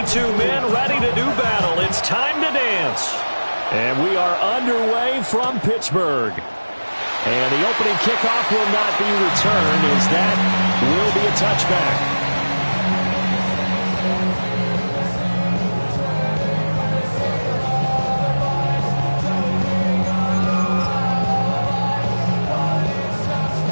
Men ready to do battle. It's time to dance. And we are underway from Pittsburgh. And the opening kickoff will not be returned, as that will be a touchback.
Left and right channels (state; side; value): inverted; both; correlation -1.00